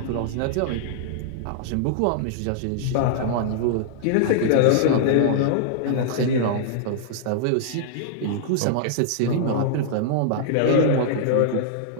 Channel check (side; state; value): both; different; correlation -0.01